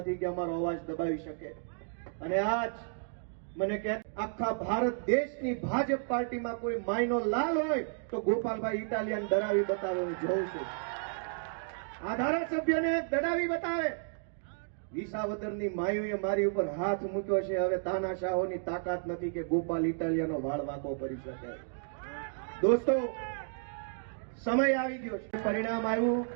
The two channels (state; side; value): silent; left; digital silence